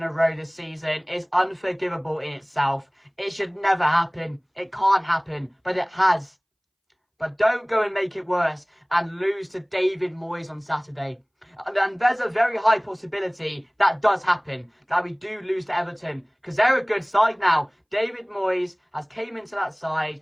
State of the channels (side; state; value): both; identical; correlation 1.00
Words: a row this season is unforgivable in itself. It should never happen. It can't happen, but it has. But don't go and make it worse and lose to David Moyes on Saturday. And there's a very high possibility that does happen, that we do lose to Everton, because they're a good side now. David Moyes has came into that side.